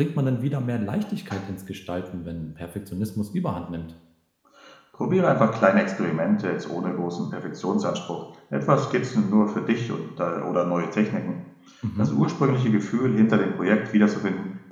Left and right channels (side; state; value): both; identical; correlation 1.00